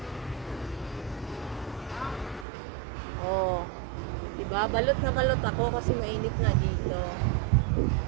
Oh. Diba? Balot na balot ako kasi mainit na dito.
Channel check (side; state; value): left; drops out; at 2.5 s